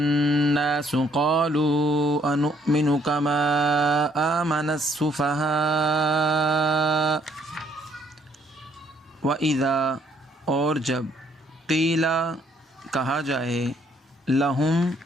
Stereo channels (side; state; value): both; normal; correlation 0.66